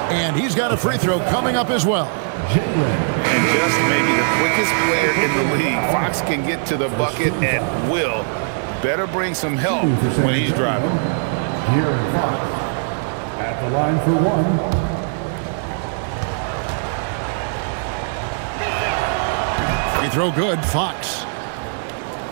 And he's got a free throw coming up as well. And just maybe the quickest player in the league. Fox can get to the bucket at will. Better bring some help when he's driving. Here in Fox. At the line for one. Free throw good, Fox.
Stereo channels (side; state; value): left; silent; 60 dB below the other